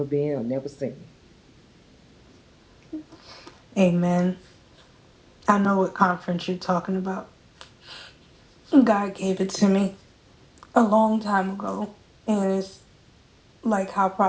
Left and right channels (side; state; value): both; identical; correlation 1.00